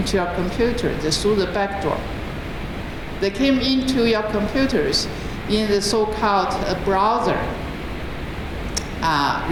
your computer through the back door. They came into your computers in the so-called browser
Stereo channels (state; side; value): identical; both; correlation 1.00